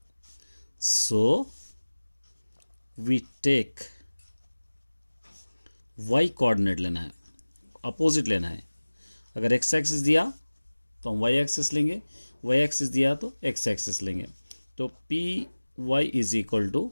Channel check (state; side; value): inverted; both; correlation -1.00